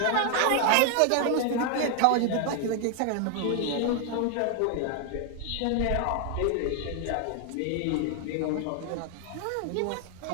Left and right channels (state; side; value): different; both; correlation 0.00